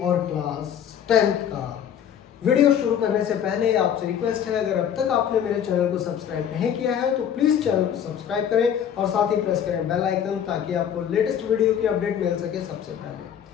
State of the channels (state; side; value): quieter; right; 9.0 dB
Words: और क्लास 10 का। वीडियो शुरू करने से पहले आपसे रिक्वेस्ट है, अगर अब तक आपने मेरे चैनल को सब्सक्राइब नहीं किया है तो प्लीज चैनल को सब्सक्राइब करें और साथ ही प्रेस करें बेल आइकन, ताकि आपको लेटेस्ट वीडियो की अपडेट मिल सके सबसे